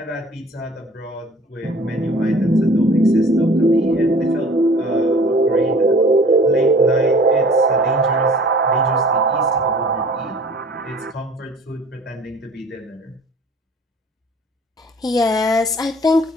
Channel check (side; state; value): both; normal; correlation 0.49